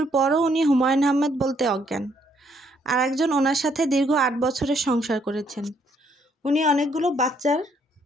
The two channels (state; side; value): normal; both; correlation 0.69